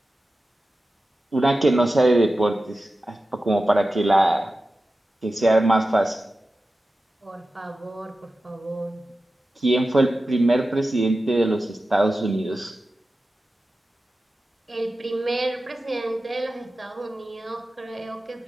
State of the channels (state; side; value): normal; both; correlation 0.94